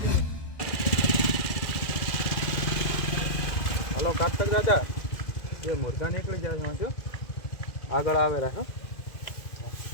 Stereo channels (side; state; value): right; late; 2.0 ms